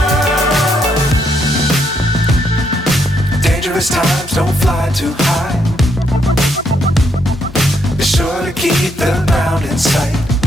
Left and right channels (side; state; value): both; normal; correlation 0.75